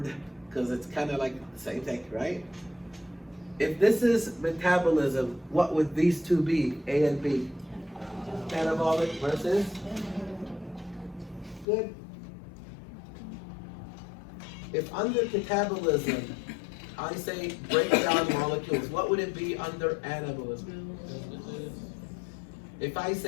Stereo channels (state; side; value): drops out; right; at 11.7 s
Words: because it's kind of like the same thing, right? If this is metabolism, what would these two be, A and B? Catabolic versus? Good. If under catabolism, I say break down molecules, what would it be under anabolism? If I